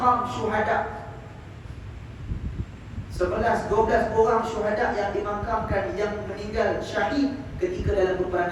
syuhada. 11-12 orang syuhada yang dimakamkan, yang meninggal syahid ketika dalam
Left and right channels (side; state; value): both; identical; correlation 1.00